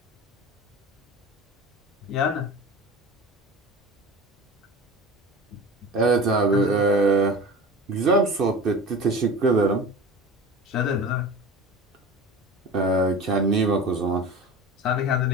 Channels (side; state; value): both; normal; correlation 0.34